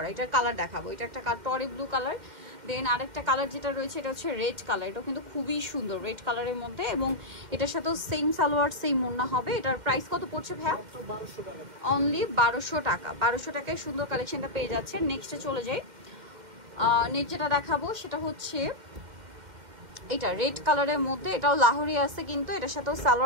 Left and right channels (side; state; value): left; late; 2.1 ms